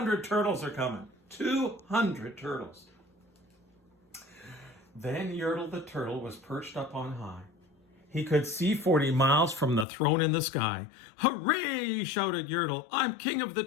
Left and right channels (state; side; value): drops out; right; at 9.9 s